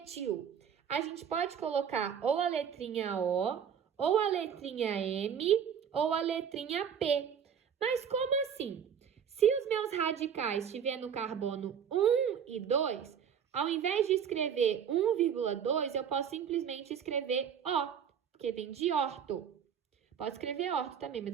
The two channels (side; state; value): left; quieter; 8.0 dB